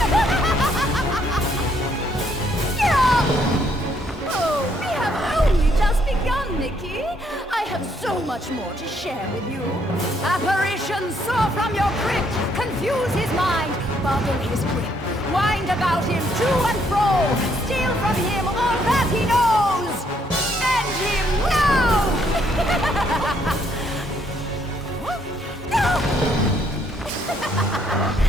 Oh, we have only just begun, Mickey. I have so much more to share with you. Apparitions soar from your crypt, confuse his mind, bubble his grip, wind about him to and fro, steal from him all that he knows. End him now!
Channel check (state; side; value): normal; both; correlation 0.70